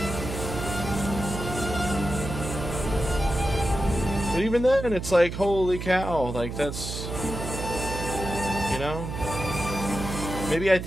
But even then, it's like, holy cow, like that's, you know, maybe I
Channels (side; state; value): right; noise; hum, 6 dB below the sound